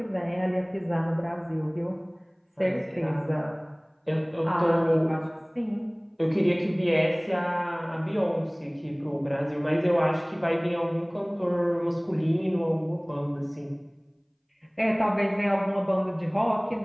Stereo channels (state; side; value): identical; both; correlation 1.00